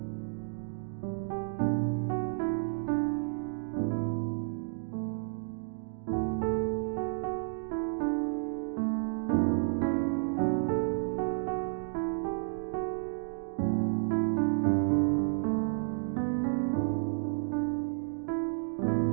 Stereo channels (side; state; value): left; silent; digital silence